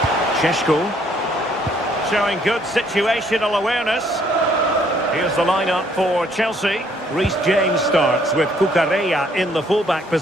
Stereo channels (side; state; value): both; normal; correlation 0.65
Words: Šeško showing good situational awareness. Here's the lineup for Chelsea. Reece James starts with Cucurella in the fullback